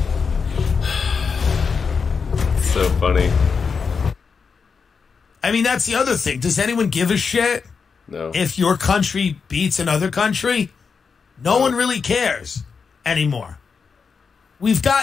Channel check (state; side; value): quieter; right; 5.5 dB